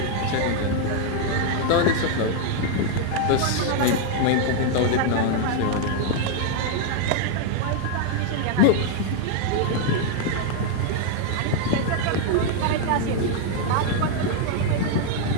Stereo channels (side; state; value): both; different; correlation 0.00